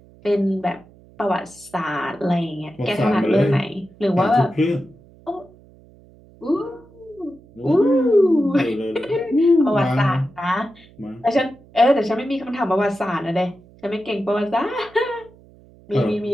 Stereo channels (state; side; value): noise; right; hum, 26 dB below the sound